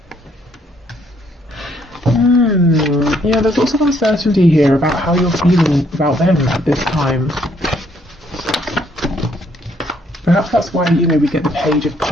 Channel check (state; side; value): normal; both; correlation 0.68